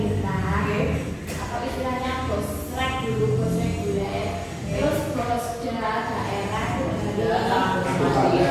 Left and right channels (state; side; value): identical; both; correlation 1.00